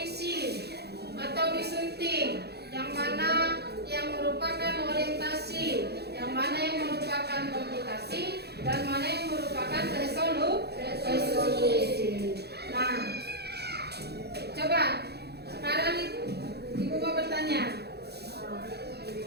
atau disunting, yang mana yang merupakan orientasi, yang mana yang merupakan komputasi, dan mana yang merupakan resolusi. Nah, coba sekarang Ibu mau bertanya,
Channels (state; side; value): late; left; 0.48 ms